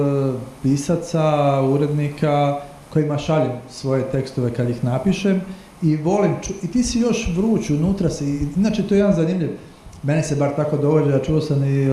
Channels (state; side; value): identical; both; correlation 1.00